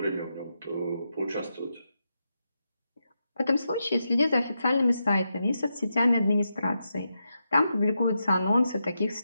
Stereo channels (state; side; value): inverted; both; correlation -0.86